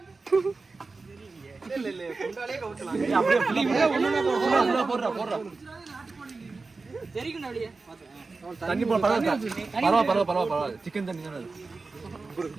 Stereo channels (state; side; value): quieter; left; 3.9 dB